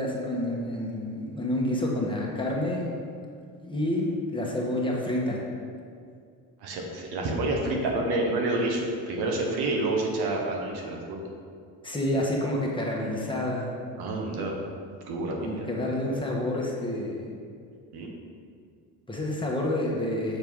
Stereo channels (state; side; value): normal; both; correlation 0.28